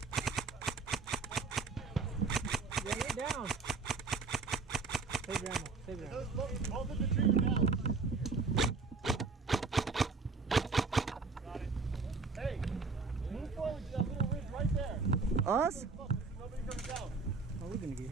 Yeah, you're down. Save your ammo. Save your ammo. Both of the trees are down. Got it. Hey, move forward to that little ridge right there. Us? Nobody comes down. Oh, we're gonna get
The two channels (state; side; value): quieter; left; 4.4 dB